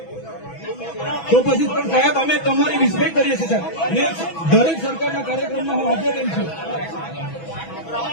તો પછી પણ સાહેબ અમે તમારી રિસ્પેક્ટ કરીએ છીએ સાહેબ. ને દરેક સરકારના કાર્યક્રમમાં હું હાજર રહી છું.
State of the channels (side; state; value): right; late; 6.1 ms